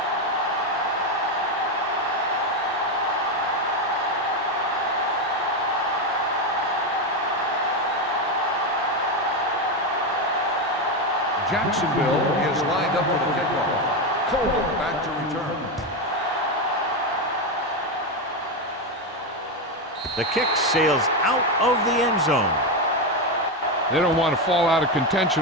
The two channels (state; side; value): normal; both; correlation 0.10